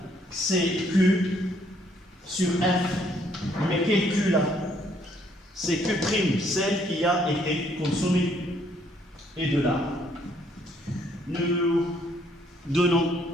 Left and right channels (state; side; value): normal; both; correlation 0.67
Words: CQ sur F. Mais quel Q là? C'est Q', celle qui a été consommée. Et de là, nous donnons